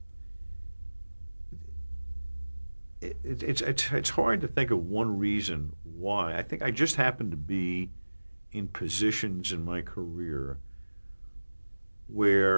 it's hard to think of one reason why. I think I just happened to be in positions in my career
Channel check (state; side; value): inverted; both; correlation -1.00